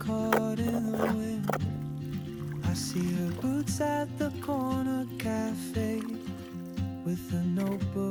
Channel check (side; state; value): both; identical; correlation 1.00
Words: in the wind. I see her boots at the corner cafe, with a